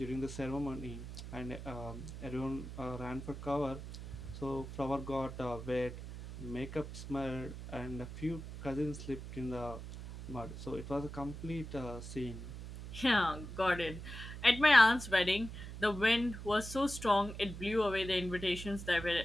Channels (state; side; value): noise; right; hum, 10 dB below the sound